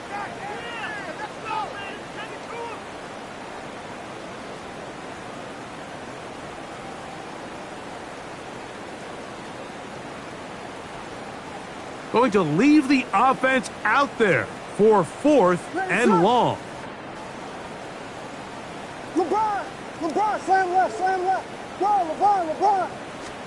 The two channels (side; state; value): both; identical; correlation 1.00